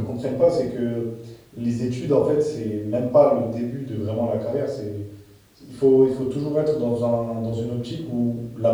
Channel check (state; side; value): identical; both; correlation 1.00